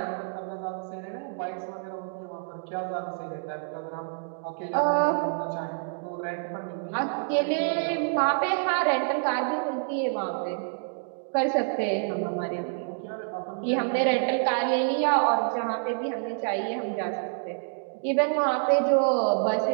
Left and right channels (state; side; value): silent; left; digital silence